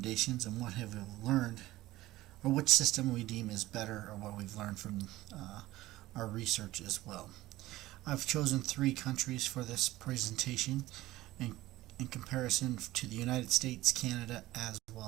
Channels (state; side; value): quieter; left; 16.9 dB